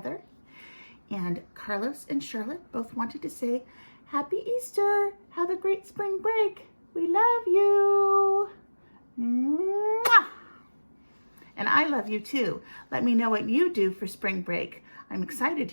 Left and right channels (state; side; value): inverted; both; correlation -1.00